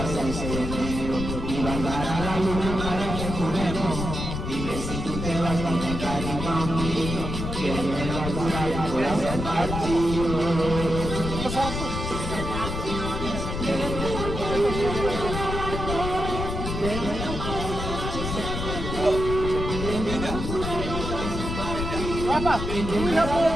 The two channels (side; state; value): left; noise; rumble, 4 dB below the sound